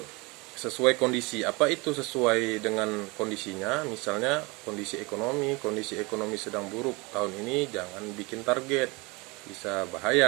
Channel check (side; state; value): left; quieter; 26.0 dB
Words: Sesuai kondisi. Apa itu sesuai dengan kondisinya? Misalnya kondisi ekonomi sedang buruk tahun ini, jangan bikin target, bisa